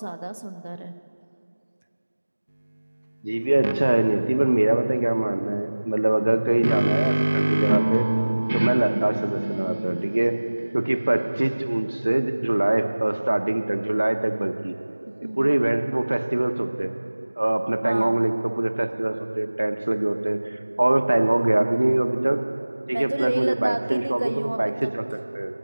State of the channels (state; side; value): inverted; both; correlation -1.00